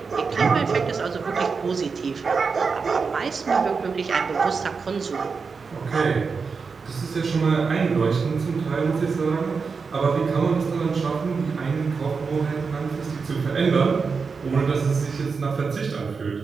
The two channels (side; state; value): left; quieter; 5.1 dB